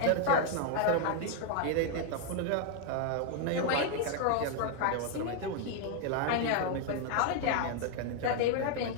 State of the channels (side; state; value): both; different; correlation 0.00